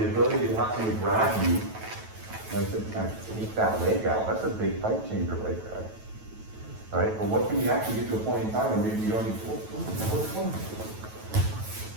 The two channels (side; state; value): left; late; 9.2 ms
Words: ability to actually grab you, like to kind of take that leg out. That's a big fight changer right there, right? But what can we actually get to a point in time where maybe you don't need to?